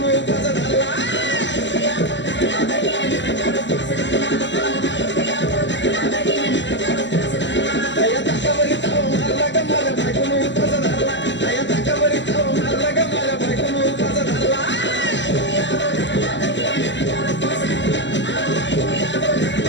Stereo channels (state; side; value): late; right; 0.53 ms